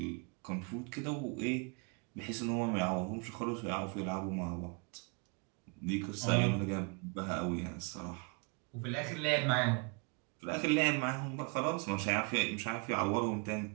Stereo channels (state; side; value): quieter; left; 33.6 dB